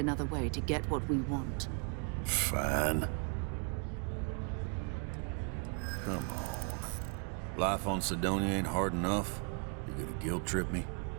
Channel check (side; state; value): left; quieter; 38.9 dB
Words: way to get what we want. Fine. Come on. Life on Sidonia ain't hard enough. You're gonna guilt trip me?